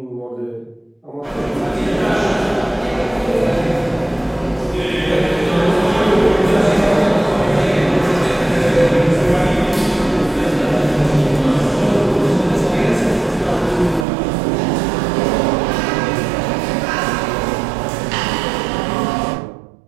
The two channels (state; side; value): drops out; left; at 14.1 s